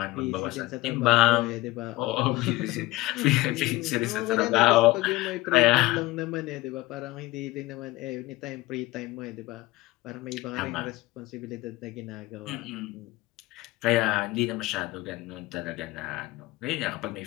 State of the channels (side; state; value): right; quieter; 19.3 dB